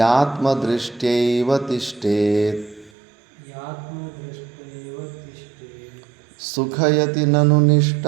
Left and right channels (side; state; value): left; drops out; at 2.9 s